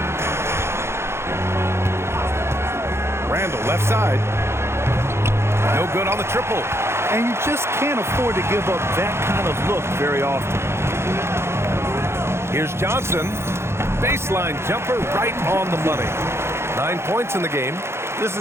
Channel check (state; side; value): late; left; 0.12 ms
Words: Randall left side. No good on the triple. And you just can't afford to give up that kind of look very often. Here's Johnson. Baseline jumper right on the money. 9 points in the game. This